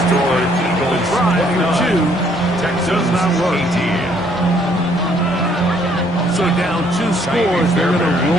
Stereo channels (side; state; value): both; normal; correlation 0.65